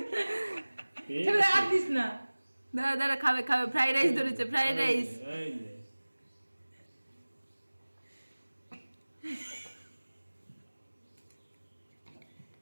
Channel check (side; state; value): both; inverted; correlation -1.00